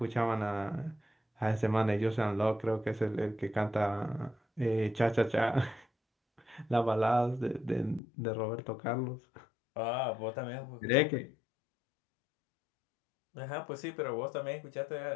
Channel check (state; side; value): drops out; right; at 8.0 s